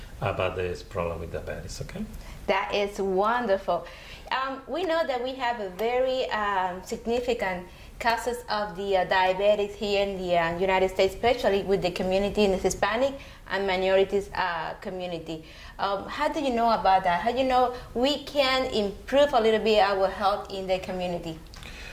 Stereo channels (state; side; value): identical; both; correlation 1.00